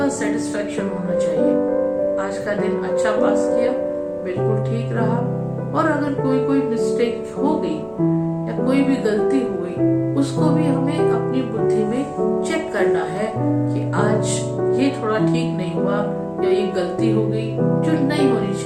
सेटिस्फेक्शन होना चाहिए, आज का दिन अच्छा पास किया, बिल्कुल ठीक रहा। और अगर कोई मिस्टेक हो गई या कोई भी गलती हो गई, उसको भी हमें अपनी बुद्धि में चेक करना है कि आज ये थोड़ा ठीक नहीं हुआ या ये गलती हो गई जो नहीं होनी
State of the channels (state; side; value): identical; both; correlation 1.00